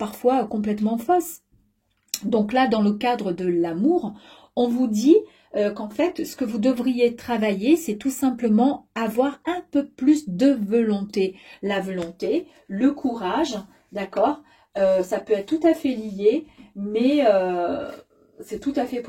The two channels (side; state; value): both; identical; correlation 1.00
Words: complètement fausses. Donc là, dans le cadre de l'amour, on vous dit qu'en fait, ce que vous devriez travailler, c'est tout simplement avoir un peu plus de volonté. La volonté, le courage, d'accord? Ça peut être tout à fait lié, mais c'est tout à fait